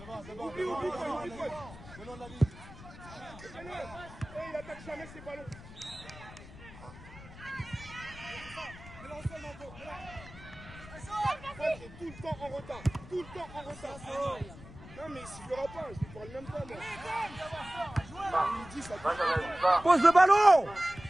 Oublie. Venons de la ligne. Il attaque jamais ses ballons. Il est tout le temps en retard. Non, mais il sifflera pas, je lui parle même pas. Il dit ça. Pose le ballon.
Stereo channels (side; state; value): left; noise; rumble, 16 dB below the sound